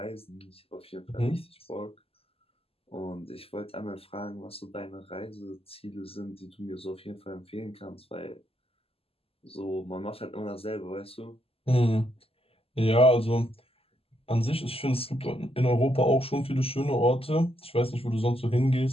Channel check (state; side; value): late; right; 0.28 ms